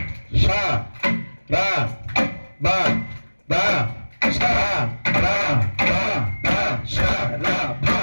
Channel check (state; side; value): inverted; both; correlation -1.00